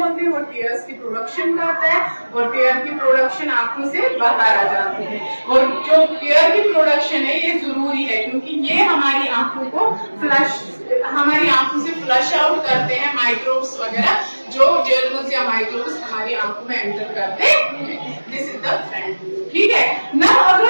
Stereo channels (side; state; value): both; inverted; correlation -1.00